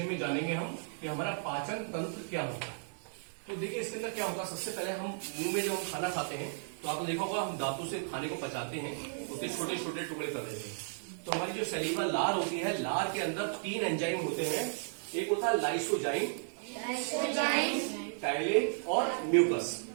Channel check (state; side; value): silent; left; digital silence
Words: में जानेंगे हम कि हमारा पाचन तंत्र क्या होता है। तो देखिए इसके अंदर क्या होता है, सबसे पहले हम मुंह में जब हम खाना खाते हैं तो आपने देखा होगा हम दांतों से खाने को पचाते हैं, उसके छोटे छोटे टुकड़े कर देते हैं। तो हमारी जो सलीवा लार होती है, लार के अंदर 3 एंजाइम होते हैं। एक होता है लाइसोजाइम, टाइलिन और म्यूकस।